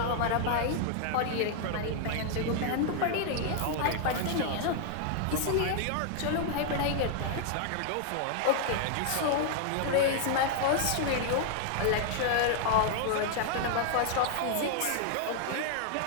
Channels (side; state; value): both; different; correlation 0.00